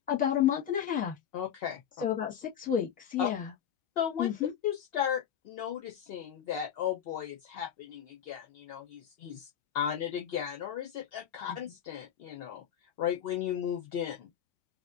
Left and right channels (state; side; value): quieter; right; 9.3 dB